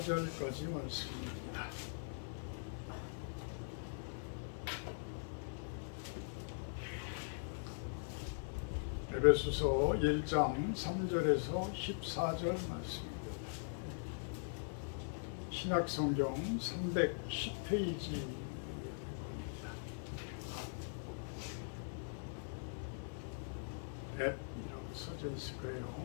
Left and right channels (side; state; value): right; silent; 50 dB below the other